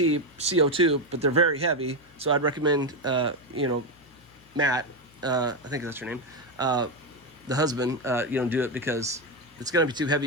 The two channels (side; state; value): left; noise; hum, 28 dB below the sound